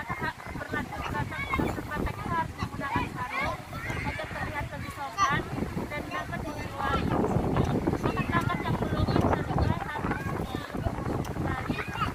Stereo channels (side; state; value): both; identical; correlation 1.00